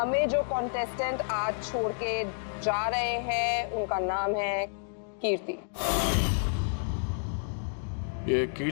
जो कॉन्टेस्टेंट आज छोड़ के जा रहे हैं उनका नाम है कीर्ति। ये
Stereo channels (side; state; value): right; silent; digital silence